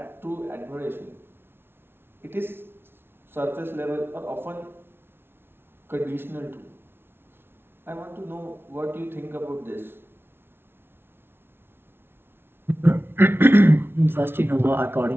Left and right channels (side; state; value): left; late; 0.11 ms